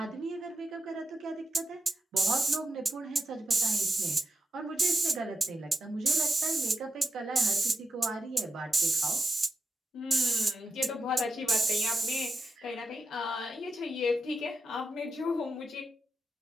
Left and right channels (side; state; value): both; normal; correlation 0.92